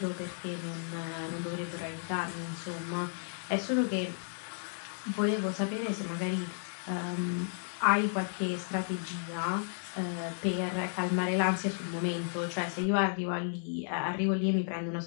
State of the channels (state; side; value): silent; right; digital silence